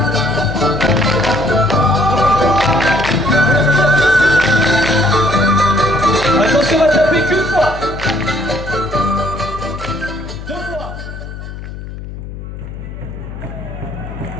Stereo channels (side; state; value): left; noise; hum, 11 dB below the sound